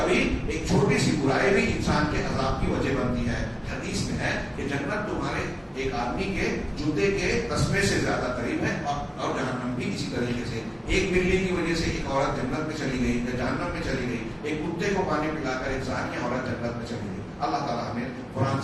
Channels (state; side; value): identical; both; correlation 1.00